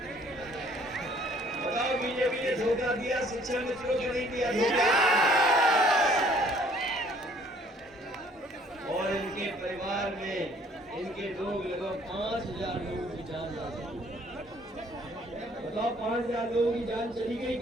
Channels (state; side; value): normal; both; correlation 0.59